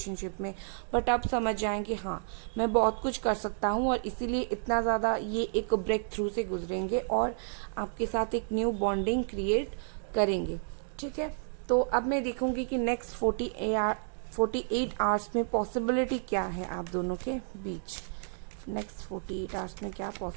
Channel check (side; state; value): left; silent; digital silence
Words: में, बट अब समझ जाएंगे हाँ मैं बहुत कुछ कर सकता हूँ, और इसीलिए इतना ज़्यादा ये एक ब्रेक थ्रू से गुजरेंगे और आपके साथ एक न्यू बॉन्डिंग क्रिएट करेंगे। ठीक है, तो अब मैं देखूंगी कि नेक्स्ट 48 आवर्स में पॉसिबिलिटी क्या है आप दोनों के बीच। नेक्स्ट 48 आवर्स में क्या